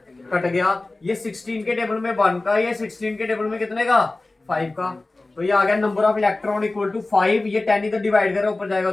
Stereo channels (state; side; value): quieter; right; 3.1 dB